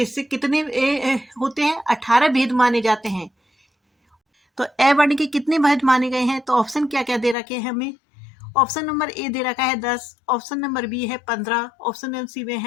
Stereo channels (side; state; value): right; drops out; at 7.4 s